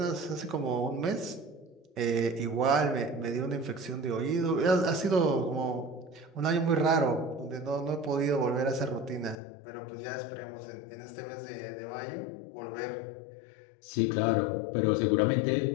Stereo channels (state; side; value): drops out; right; at 9.4 s